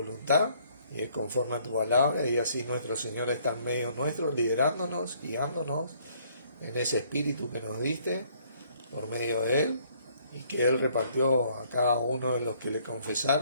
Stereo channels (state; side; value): inverted; both; correlation -0.64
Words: y es conforme a tu palabra, y así nuestro Señor está en medio nuestro, liderándonos, guiándonos en ese espíritu que nos diste por medio de Él y que Él repartió a cada uno de los que le